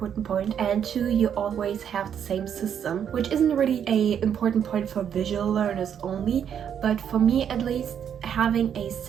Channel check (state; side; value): quieter; left; 8.6 dB